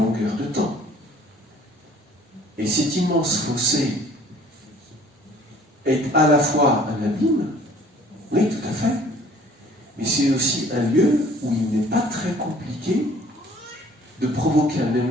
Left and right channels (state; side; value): normal; both; correlation 0.54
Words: de temps. Et cet immense fossé est à la fois un abîme, oui, tout à fait, mais c'est aussi un lieu où il n'est pas très compliqué de provoquer un